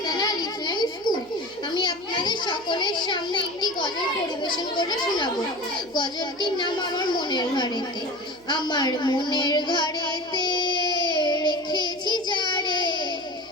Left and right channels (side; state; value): left; noise; hum, 27 dB below the sound